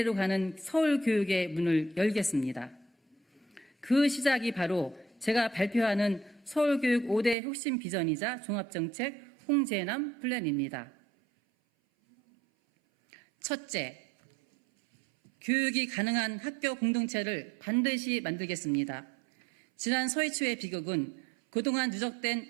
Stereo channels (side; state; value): left; drops out; at 7.4 s